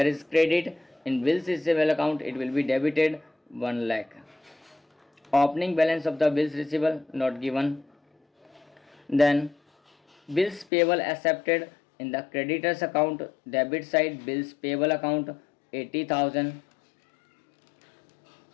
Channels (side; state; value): right; drops out; at 10.7 s